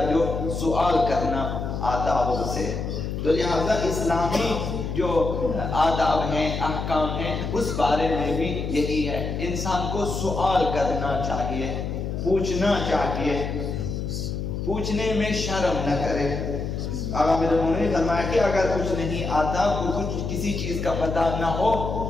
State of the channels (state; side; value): noise; left; hum, 4 dB below the sound